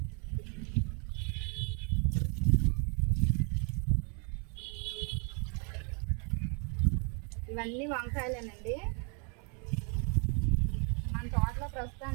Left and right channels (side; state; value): left; quieter; 37.6 dB